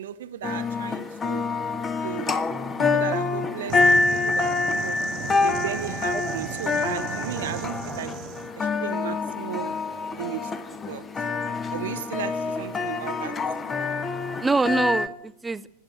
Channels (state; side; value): normal; both; correlation 0.69